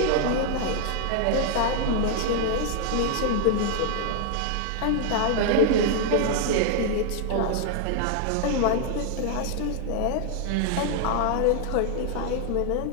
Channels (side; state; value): both; different; correlation 0.00